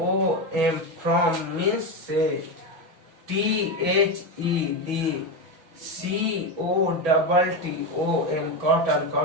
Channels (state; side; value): late; left; 6.1 ms